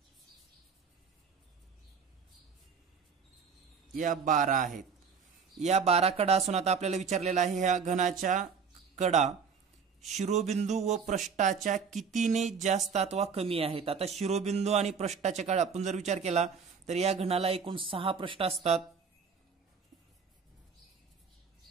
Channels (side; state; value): left; quieter; 6.0 dB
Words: या 12 आहेत। या 12 कडा असून आता आपल्याला विचारलेला आहे ह्या घनाच्या कडा शिरोबिंदू व पृष्ठाच्या कितीने जास्त अथवा कमी आहेत. आता शिरोबिंदू आणि पृष्ठाच्या काळ आपण जर विचार केला तर या घनाला एकूण 6 पृष्ठ असतात.